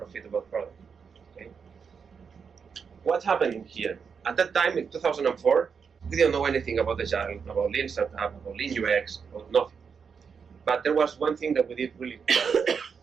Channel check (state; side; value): quieter; left; 6.1 dB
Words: product. Okay. What happened here? At that time, in 2004, we didn't know anything about Agile, about Lean Startup, about Lean UX, about nothing. But there was one thing that we did really well.